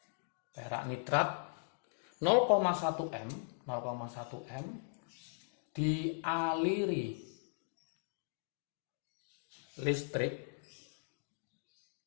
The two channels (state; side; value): silent; right; digital silence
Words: perak nitrat 0,1 M dialiri listrik